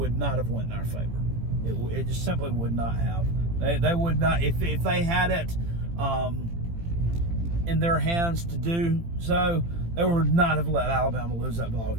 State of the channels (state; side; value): late; left; 18 ms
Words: not have went in our favor. It just simply would not have. They would not, if they had it in their hands to do so, they would not have let Alabama lose that ball